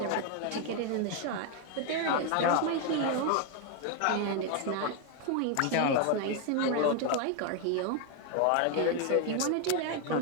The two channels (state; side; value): different; both; correlation 0.01